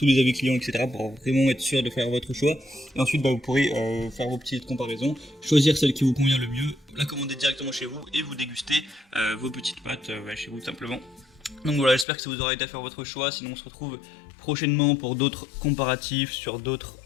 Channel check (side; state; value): right; drops out; at 12.1 s